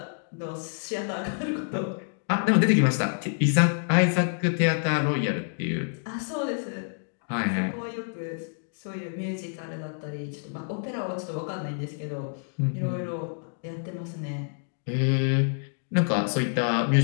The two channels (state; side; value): silent; right; digital silence